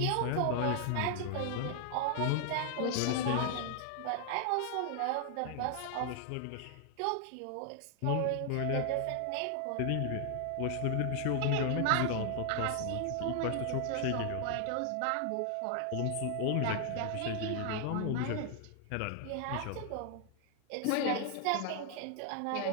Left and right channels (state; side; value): different; both; correlation 0.00